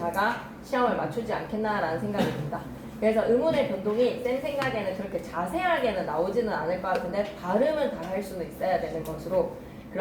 시험을 맞추지 않겠나라는 생각이 듭니다. 그래서 의문의 변동이 쌤 생각에는 그렇게 자세하게는 나오지는 않을 것 같은데 발음은 다 할 수는 있어야 되는 것으로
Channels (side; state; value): both; identical; correlation 1.00